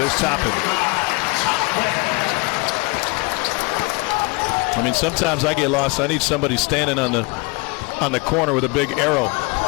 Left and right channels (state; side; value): quieter; right; 27.8 dB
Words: There's Toppin. I mean, sometimes I get lost. I need somebody standing on the corner with a big arrow.